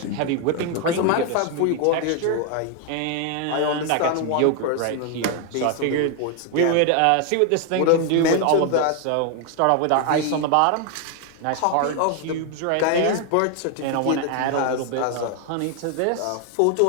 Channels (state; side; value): different; both; correlation 0.01